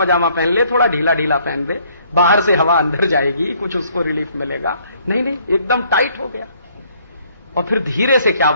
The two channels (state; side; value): inverted; both; correlation -0.64